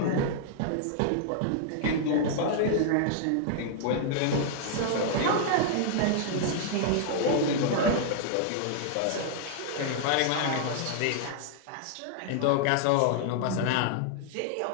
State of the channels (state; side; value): different; both; correlation -0.01